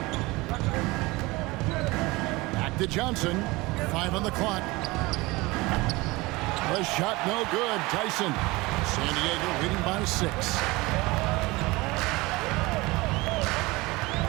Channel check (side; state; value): left; quieter; 22.3 dB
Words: Back to Johnson. 5 on the clock. The shot no good. Tyson. San Diego leading by 6.